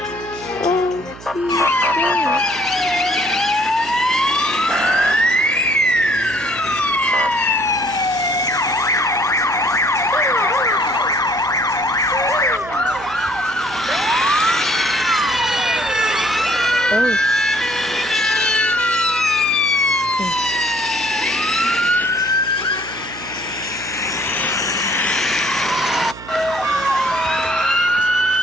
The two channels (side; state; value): right; noise; hum, 17 dB below the sound